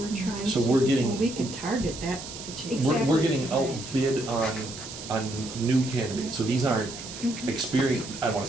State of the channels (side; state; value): right; noise; hiss, 11 dB below the sound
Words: trying So to we're do. getting, We can target that situation. Exactly. we're getting outbid on new candidates. So these aren't experienced, I don't want